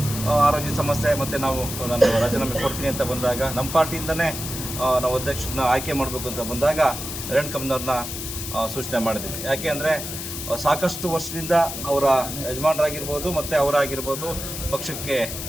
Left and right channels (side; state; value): left; noise; hiss, 7 dB below the sound